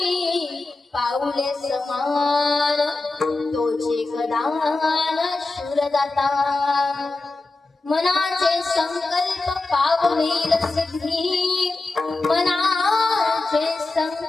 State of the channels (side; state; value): right; quieter; 3.3 dB